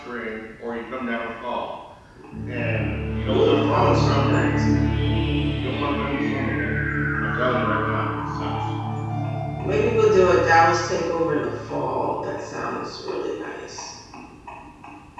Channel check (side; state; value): both; identical; correlation 1.00